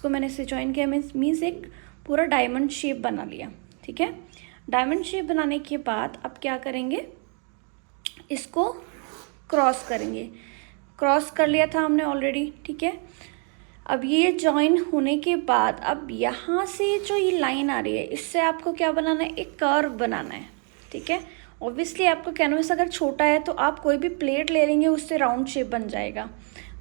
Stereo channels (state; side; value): quieter; left; 40.0 dB